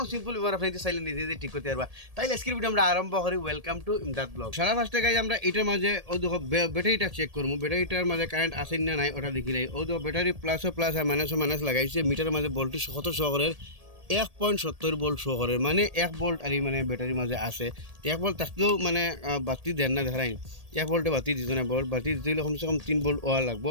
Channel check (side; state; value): left; late; 1.8 ms